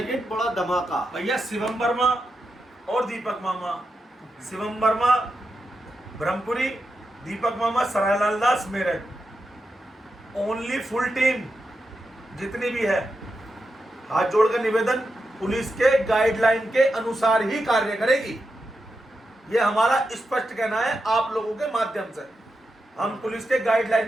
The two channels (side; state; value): both; normal; correlation 0.87